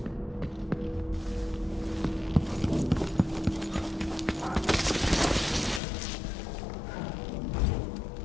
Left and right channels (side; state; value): right; drops out; at 5.8 s